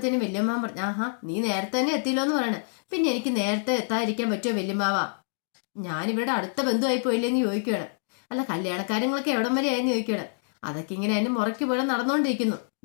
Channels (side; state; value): right; silent; digital silence